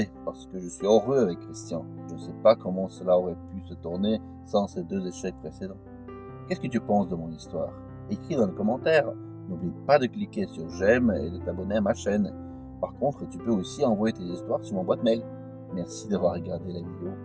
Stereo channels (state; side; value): identical; both; correlation 1.00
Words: parce que je suis heureux avec Christian. Je ne sais pas comment cela aurait pu se tourner sans ces 2 échecs précédents. Qu'est-ce que tu penses de mon histoire? Écris dans les commentaires. N'oublie pas de cliquer sur j'aime et de t'abonner à ma chaîne. Par contre, tu peux aussi envoyer tes histoires sur mon boîte mail. Merci d'avoir regardé la vidéo.